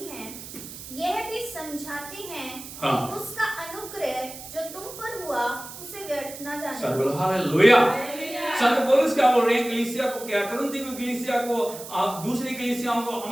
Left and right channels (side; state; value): right; noise; hiss, 13 dB below the sound